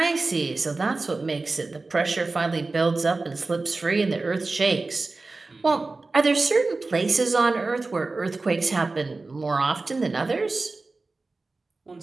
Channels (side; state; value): left; quieter; 3.5 dB